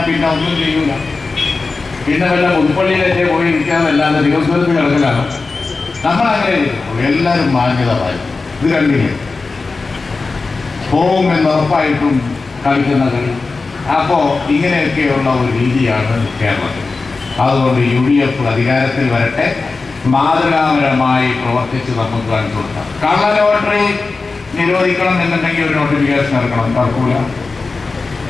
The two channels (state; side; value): quieter; right; 4.0 dB